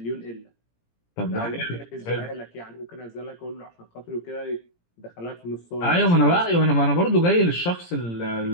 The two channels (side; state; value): right; late; 17 ms